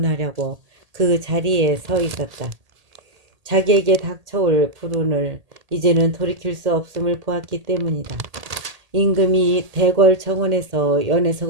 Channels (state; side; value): late; left; 1.8 ms